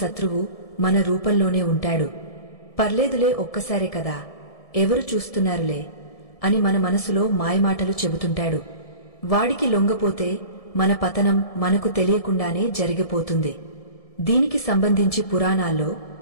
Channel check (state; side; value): late; right; 1.7 ms